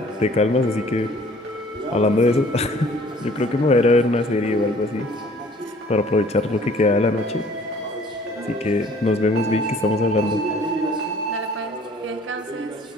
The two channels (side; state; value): both; normal; correlation 0.54